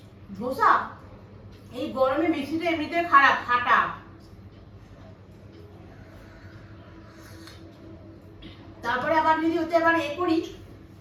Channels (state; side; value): identical; both; correlation 1.00